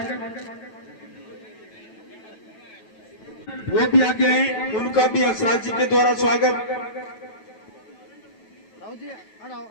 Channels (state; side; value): late; right; 9.2 ms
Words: वो भी आगे आए, उनका भी हंसराज जी के द्वारा स्वागत।